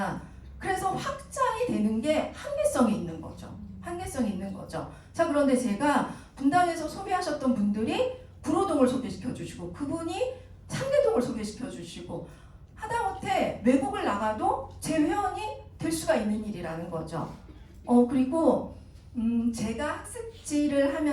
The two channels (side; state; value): both; identical; correlation 1.00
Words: 그래서 확장이 되는 게 한계성이 있는 거죠. 한계성이 있는 거죠. 자, 그런데 제가 분당에서 소개하셨던 분들이 구로동을 소개시켜 주시고, 그분이 상계동을 소개시켜 주시고, 하다못해 외국을 나가도 제 회원이 될 수가 있는 일이라는 거죠. 그리고 제가 학습지를